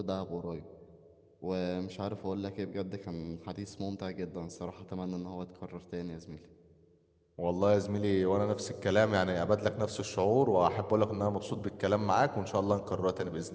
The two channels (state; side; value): identical; both; correlation 1.00